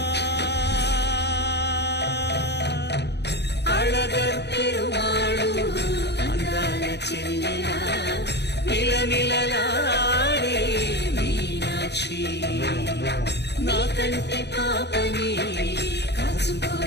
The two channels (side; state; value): right; late; 0.49 ms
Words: అళగర్ పెరుమాళు అందాల చెల్లెలా మిలమిలలాడే మీనాక్షి, నీ కంటి పాపని కాచుకో